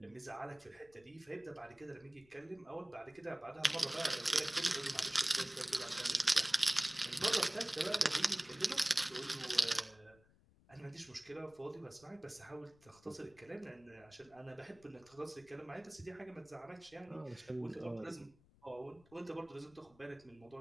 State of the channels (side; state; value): left; noise; rumble, 28 dB below the sound